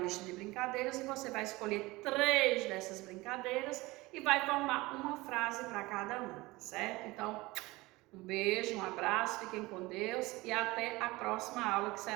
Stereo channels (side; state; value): left; quieter; 21.3 dB